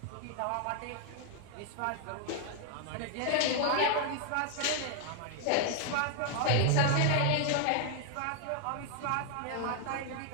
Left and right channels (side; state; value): both; different; correlation 0.00